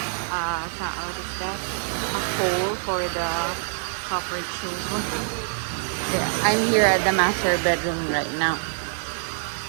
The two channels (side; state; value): left; silent; digital silence